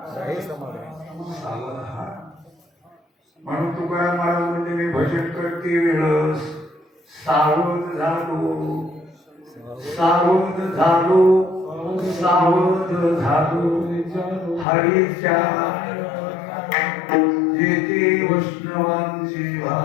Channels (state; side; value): drops out; right; at 14.7 s